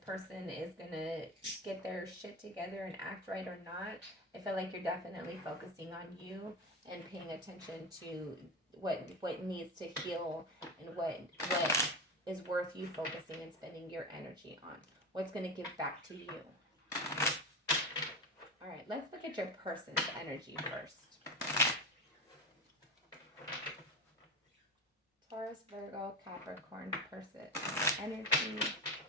is going to get their shit together and act right or not, I feel like you're definitely focusing on you and paying attention to what needs to heal and what is worth you focusing and spending your energy on. What's going to give back to you. All right, let's look at your person's energy first. Taurus, Virgo, Capricorn person energy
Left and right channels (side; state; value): both; normal; correlation 0.22